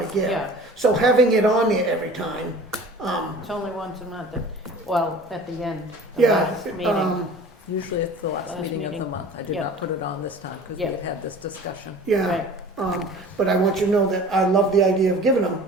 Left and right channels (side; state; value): both; normal; correlation 0.43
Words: give. Yeah, So having it on there every time, it's only once a month, well, at the end, the yeah, last meeting. Usually it's the last Last meeting of meeting. the month. I did Yeah. not put it on this time because we Yeah. had this discussion. yeah. Right. But I want you to know that I love the idea of giving them.